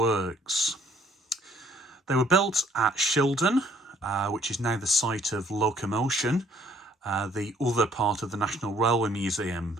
They were built at Shildon, which is now the site of Locomotion, the other part of the National Railway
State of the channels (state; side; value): normal; both; correlation 0.61